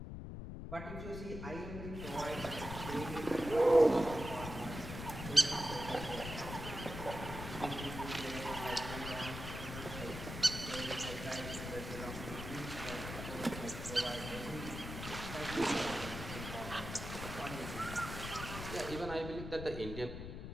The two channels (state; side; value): noise; left; rumble, 8 dB below the sound